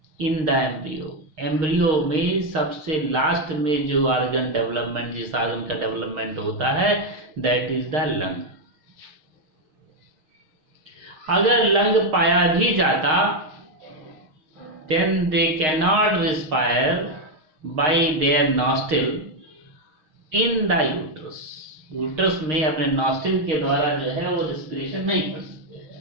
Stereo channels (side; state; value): left; late; 6.4 ms